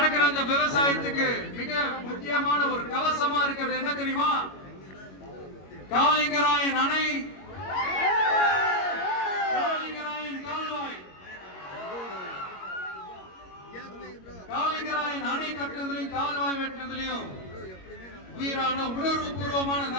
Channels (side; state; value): right; late; 21 ms